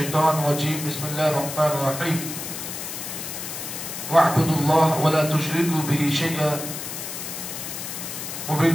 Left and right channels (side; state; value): left; noise; hiss, 7 dB below the sound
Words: الرجيم. بسم الله الرحمن الرحيم. واعبدوا الله ولا تشركوا به شيئا